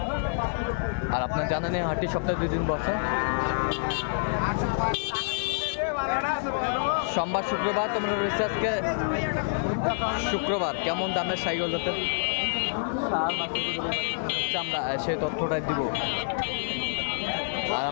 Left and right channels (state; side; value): silent; right; 55 dB below the other